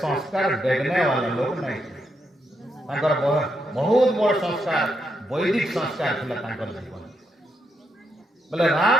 देखने वाला लोग नहीं थे बहुत बड़ संस्कार वैदिक संस्कार थिला तांकर जीवन बोले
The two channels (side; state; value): both; normal; correlation 0.80